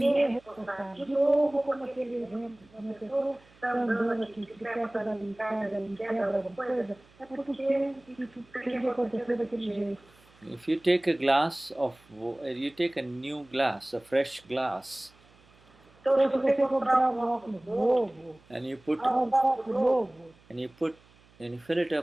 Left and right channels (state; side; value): noise; right; hum, 29 dB below the sound